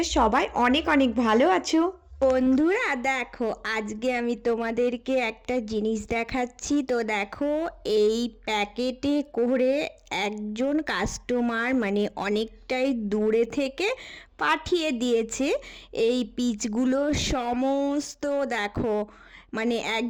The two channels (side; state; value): both; identical; correlation 1.00